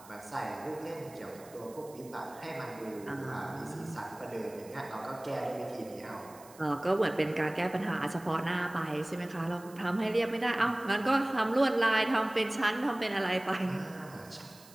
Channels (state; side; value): noise; right; hiss, 22 dB below the sound